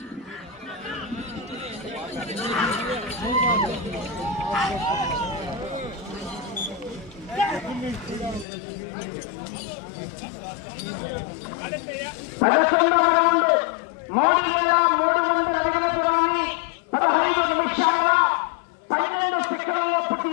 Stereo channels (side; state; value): right; drops out; at 8.5 s